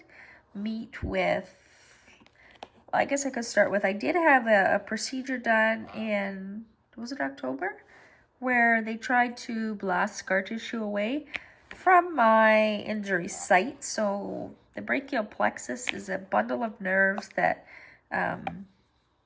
meet with, I guess I could start with, I did have a procedure done in, was it October? Where they tried to blast scar tissue away from my injury site. So the brachial plexus is a bundle of nerves that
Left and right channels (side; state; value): both; identical; correlation 1.00